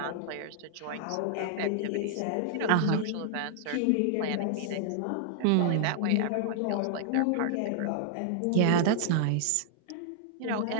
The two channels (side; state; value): both; different; correlation 0.00